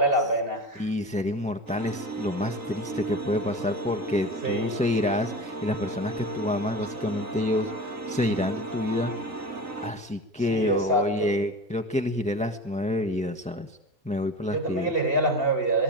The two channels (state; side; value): normal; both; correlation 0.31